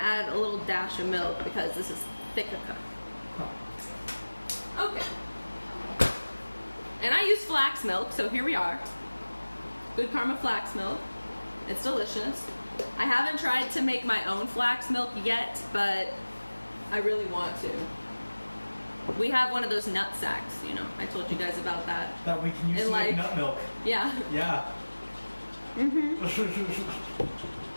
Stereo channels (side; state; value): both; inverted; correlation -1.00